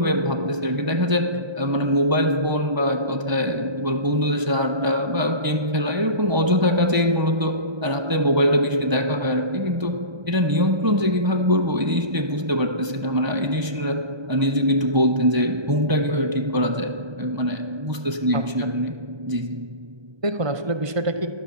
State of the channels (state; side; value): late; left; 1.3 ms